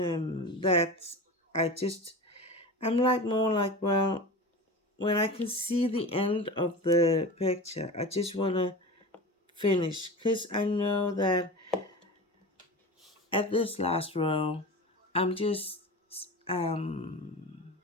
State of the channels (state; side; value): normal; both; correlation 0.30